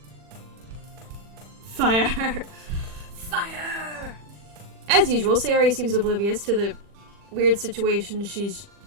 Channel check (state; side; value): late; left; 40 ms